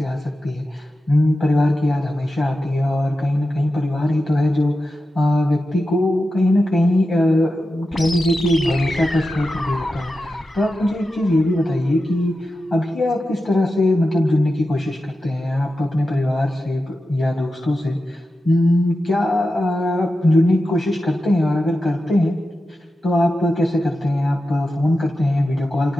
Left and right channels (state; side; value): normal; both; correlation 0.91